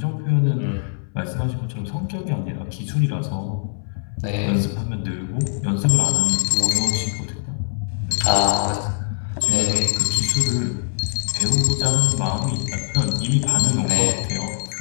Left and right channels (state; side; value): silent; right; 64 dB below the other